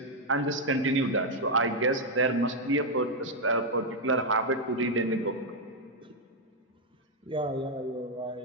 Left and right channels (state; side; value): normal; both; correlation 0.00